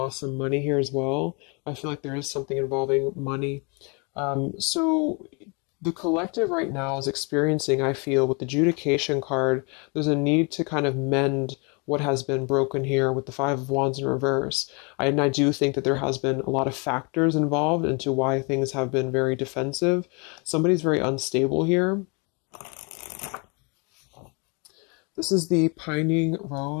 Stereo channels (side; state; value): right; quieter; 32.6 dB